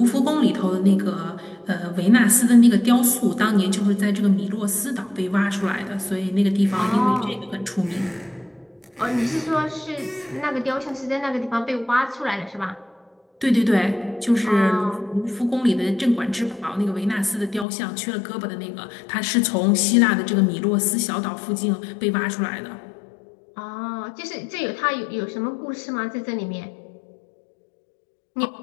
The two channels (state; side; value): drops out; right; at 17.7 s